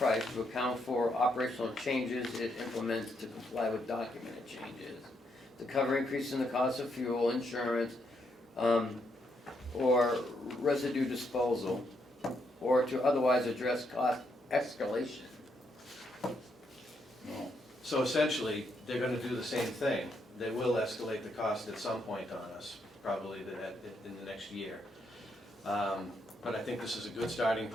to account for operational changes it implements to comply with documented changes, to cover increases in the cost of fuel, insurance, or residue disposal, or to otherwise address cost escalation. So essentially, they're gonna do the same thing. They will escalate the cost at some point on us, probably in the next year. But I think this is a good starting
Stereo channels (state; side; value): normal; both; correlation 0.77